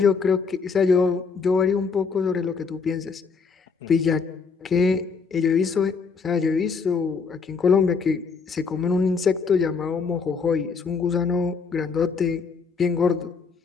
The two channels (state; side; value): quieter; right; 5.1 dB